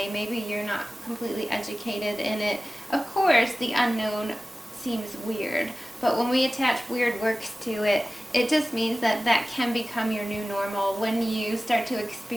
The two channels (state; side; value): normal; both; correlation 0.97